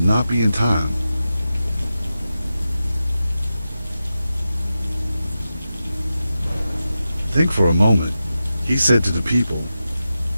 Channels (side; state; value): both; inverted; correlation -0.92